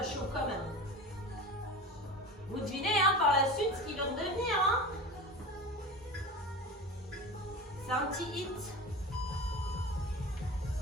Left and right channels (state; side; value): normal; both; correlation 0.30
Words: chauffe quand même. Vous devinez hein, par la suite ce qu'ils vont devenir. Hein. C'est un petit hit.